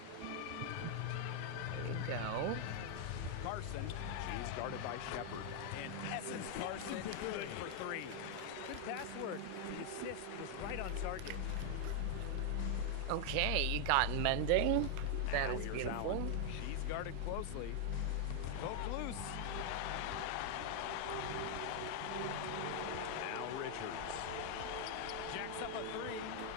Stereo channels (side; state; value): both; different; correlation 0.00